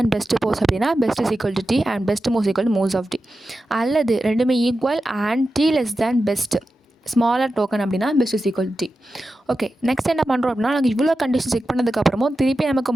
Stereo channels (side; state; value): both; normal; correlation 0.92